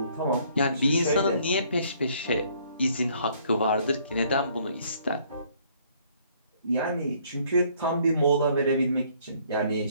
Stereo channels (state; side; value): inverted; both; correlation -0.63